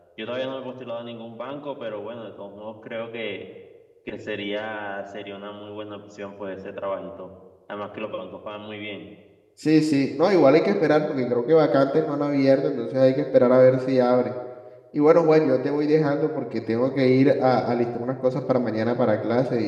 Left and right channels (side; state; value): both; identical; correlation 1.00